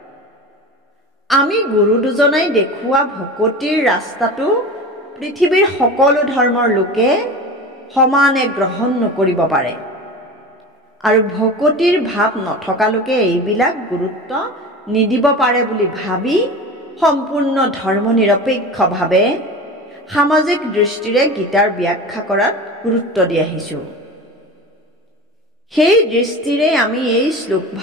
আমি গুৰু দুজনাই দেখুওৱা ভকতিৰ ৰাস্তাটো পৃথিৱীৰ সকলো ধৰ্মৰ লোকে সমানে গ্ৰহণ নকৰিব পাৰে, আৰু ভকতিৰ ভাৱ নথকা লোকে এইবিলাক গুৰুত্ব নিদিব পাৰে বুলি ভাবি সম্পূৰ্ণ ধৰ্মনিৰপেক্ষভাৱে সামাজিক দৃষ্টিৰে গীতাৰ ব্যাখ্যা কৰাত গুৰুত্ব দি আহিছোঁ। সেই দৃষ্টিৰে আমি এই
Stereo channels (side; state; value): both; normal; correlation 0.32